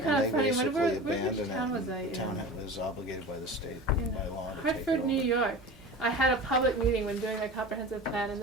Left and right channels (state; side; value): normal; both; correlation 0.34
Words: And of they funny. basically Which abandoned town it, was I and in? the town was obligated by the state In by law to take Hartford, it New over. York. I had a public meeting when doing my comprehensive plan, and